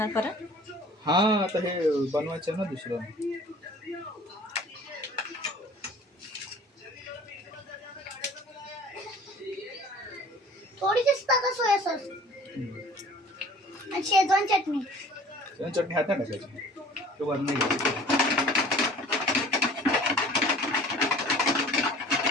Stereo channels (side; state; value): both; normal; correlation 0.48